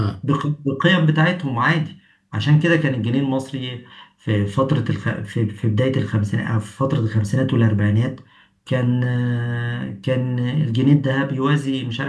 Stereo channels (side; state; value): both; identical; correlation 1.00